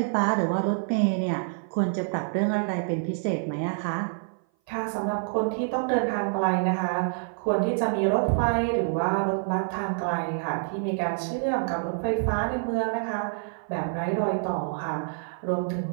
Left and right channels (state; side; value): silent; left; 57 dB below the other